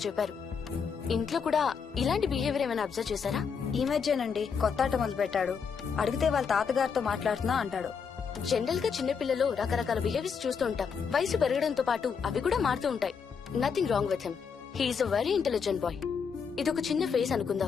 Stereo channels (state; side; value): quieter; right; 6.2 dB